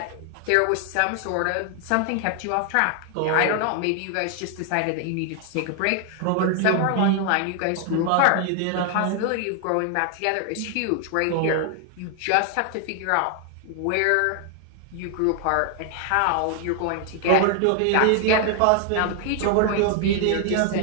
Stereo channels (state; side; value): different; both; correlation 0.00